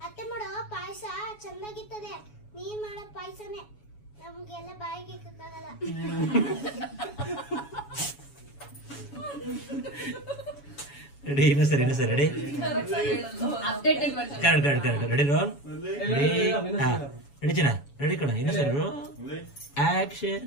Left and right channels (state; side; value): late; right; 7.1 ms